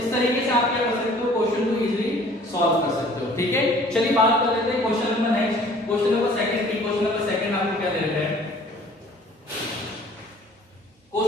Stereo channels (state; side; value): normal; both; correlation 0.52